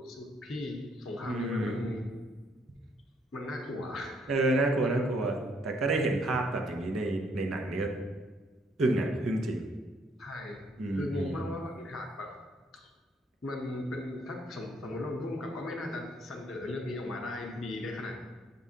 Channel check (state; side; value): normal; both; correlation 0.68